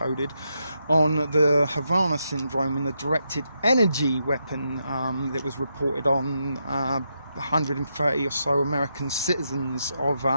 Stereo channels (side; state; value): both; inverted; correlation -0.83